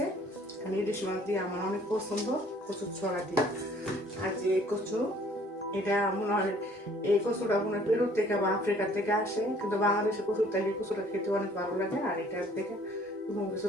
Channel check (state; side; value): normal; both; correlation 0.57